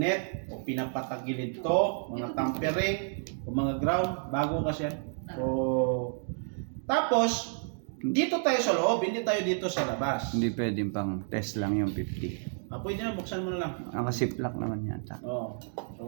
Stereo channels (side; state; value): left; silent; digital silence